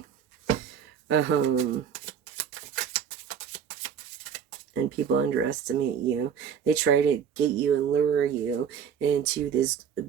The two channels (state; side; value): quieter; left; 7.7 dB